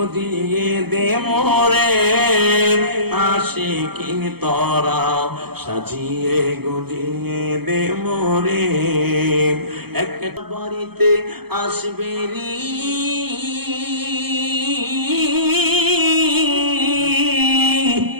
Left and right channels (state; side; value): late; left; 0.96 ms